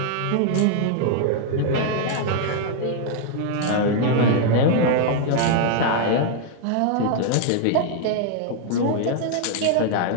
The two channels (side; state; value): both; different; correlation 0.00